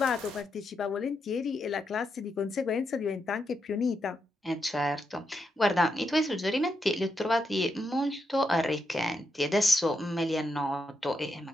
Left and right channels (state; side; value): normal; both; correlation 0.83